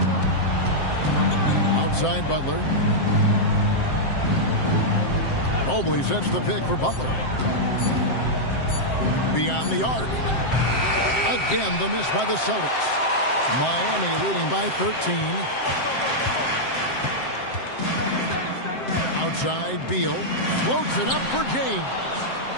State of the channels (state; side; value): late; right; 7.7 ms